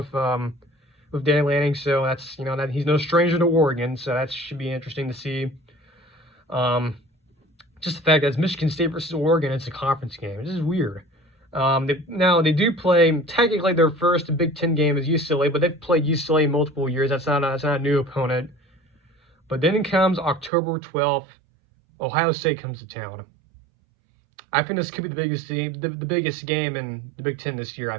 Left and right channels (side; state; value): left; drops out; at 20.5 s